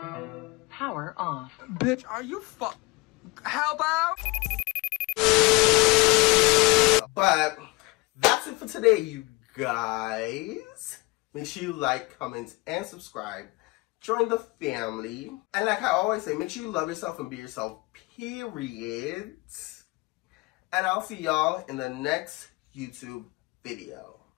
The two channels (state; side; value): quieter; right; 24.5 dB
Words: Power off. Bitch, are you how about? But that's it for today, you guys. Make sure you like, comment, and subscribe. Join the family. And like I always say, make sure you love yourself and be yourself, period. And I'll see y'all in the next YouTube video.